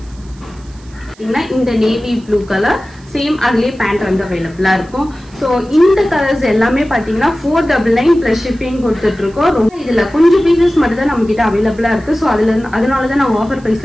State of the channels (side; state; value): right; noise; hiss, 27 dB below the sound